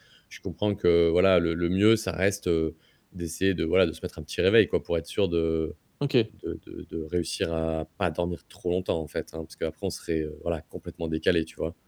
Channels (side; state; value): both; identical; correlation 1.00